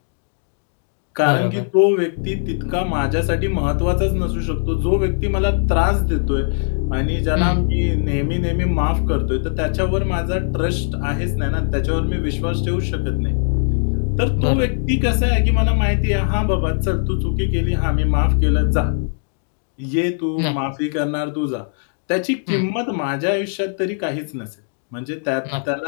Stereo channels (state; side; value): silent; right; digital silence